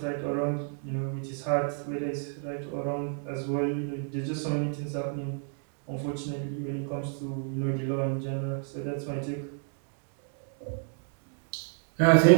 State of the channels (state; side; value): silent; left; 58 dB below the other